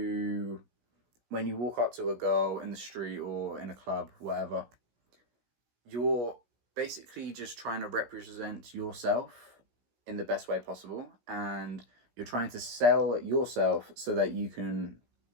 walk up to a girl in the street or in a club, whatever, you're basically just trying to represent yourself in the best way possible, and you're trying to sell yourself so that you can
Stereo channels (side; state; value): left; late; 17 ms